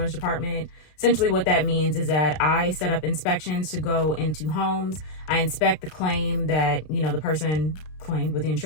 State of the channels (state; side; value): late; right; 33 ms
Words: department. Essentially what that means is that I set up inspections to go into homes. I inspect the claim that, you know, the person claimed with the